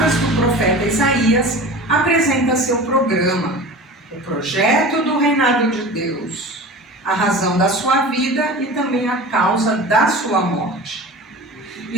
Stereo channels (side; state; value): both; normal; correlation 0.35